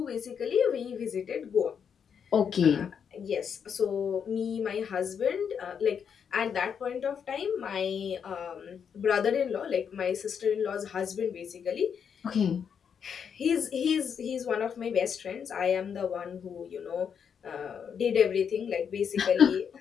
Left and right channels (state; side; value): quieter; right; 7.3 dB